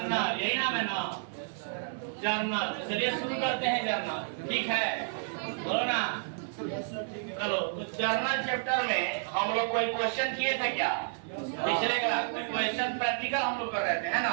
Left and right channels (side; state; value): left; silent; 57 dB below the other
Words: यही नाम है ना? जर्नल। चलिए शुरू करते हैं जर्नल। ठीक है, बोलो ना। चलो, तो जर्नल चैप्टर में हम लोग कोई क्वेश्चन किए थे क्या? पिछले क्लास में क्वेश्चन प्रैक्टिकल हम लोग कर रहे थे, है ना?